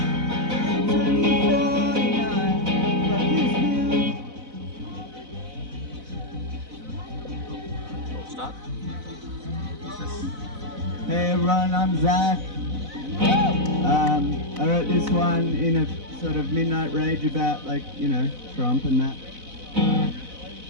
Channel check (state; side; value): late; left; 4.0 ms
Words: Start. Hey everyone, I'm Zach. I wrote this one in a sort of midnight rage about, like, you know, Trump and that.